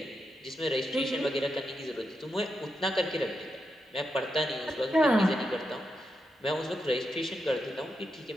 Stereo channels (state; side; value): normal; both; correlation 0.85